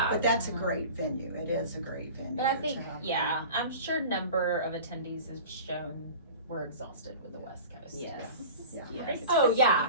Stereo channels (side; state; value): both; inverted; correlation -0.38